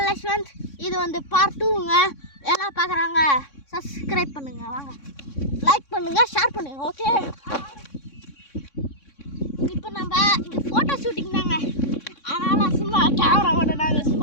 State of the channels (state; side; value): late; right; 3.6 ms